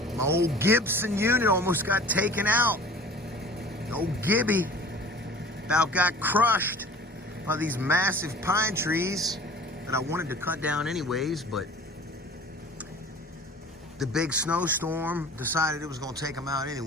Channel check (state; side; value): normal; both; correlation 0.44